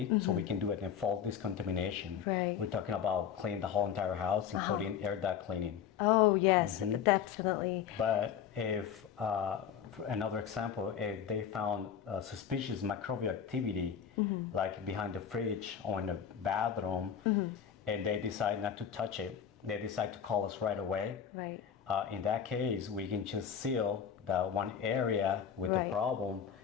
so we can do it in full discontamination. Right. We're talking about cleaning the whole entire house, including air duct cleaning. Oh yes, definitely. But if, for another example, if they found suspicious microbial activity, like behind the fridge or in the bathroom, and they decide not to touch it, they decide to call us right away. Right. In that case, we can just seal that one area with the problem,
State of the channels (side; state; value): right; quieter; 8.3 dB